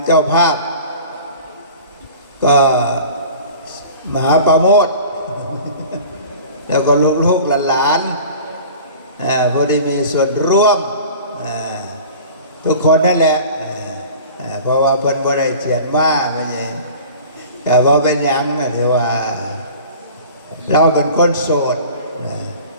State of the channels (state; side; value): inverted; both; correlation -0.42